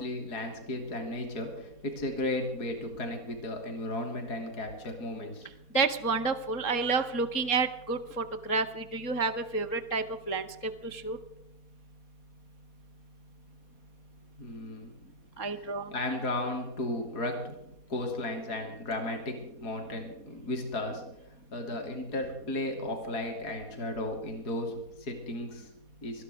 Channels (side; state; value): right; late; 4.2 ms